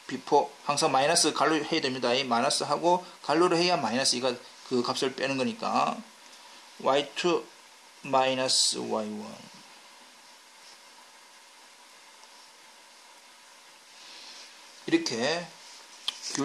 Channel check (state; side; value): identical; both; correlation 1.00